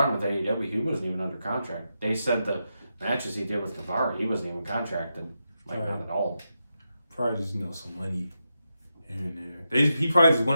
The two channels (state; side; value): inverted; both; correlation -0.87